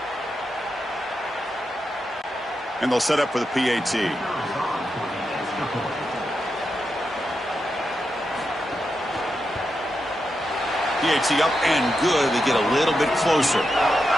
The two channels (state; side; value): normal; both; correlation 0.86